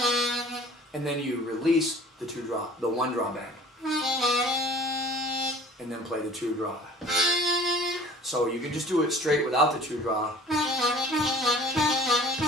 And then you release the 1 draw bend. And then play the 2 draw. So you can just do it straight without the 2 draw.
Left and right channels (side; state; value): both; normal; correlation 0.48